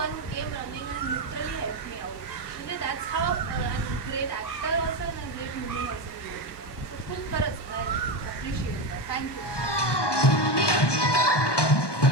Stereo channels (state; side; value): late; right; 1.2 ms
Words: who came running and literally help me out. म्हणजे that's how great actor also and great human also. So खूप खरंच आय अप्रिशिएट दॅट. थँक्यू.